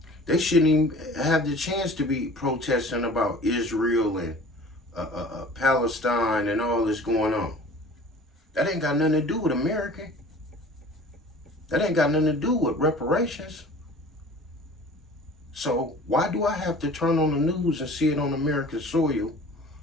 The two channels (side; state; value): both; normal; correlation 0.45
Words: They shouldn't even have the chance to be protesting about Israel and Palestine and all this going on. That ain't got nothing to do with America. That ain't got nothing to do with reparations. So why do I have to turn on the news and see it on American soil?